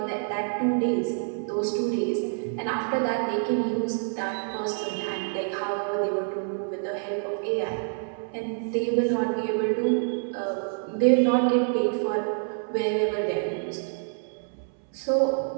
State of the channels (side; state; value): left; silent; 60 dB below the other